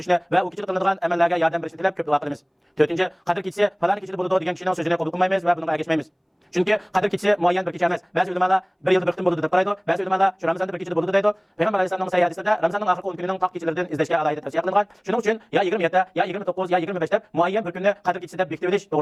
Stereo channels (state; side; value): identical; both; correlation 1.00